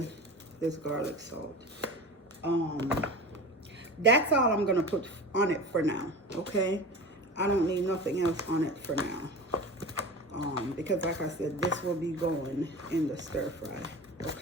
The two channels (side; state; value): both; normal; correlation 0.32